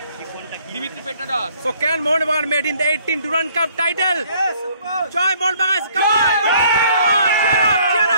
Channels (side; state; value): both; inverted; correlation -0.62